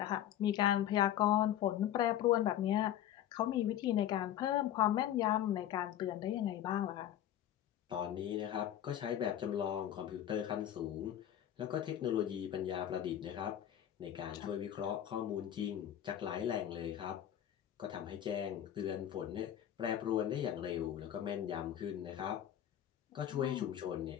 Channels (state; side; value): quieter; right; 11.2 dB